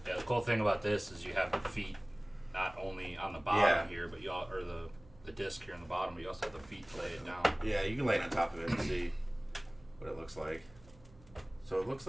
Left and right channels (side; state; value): right; noise; hum, 24 dB below the sound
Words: Yeah, the cool thing about this is you have the feet not only on the bottom here, but or the disc here on the bottom, but you also have the feet to lay it down. Yeah, you can lay it on top of it and see what it looks like. So it looks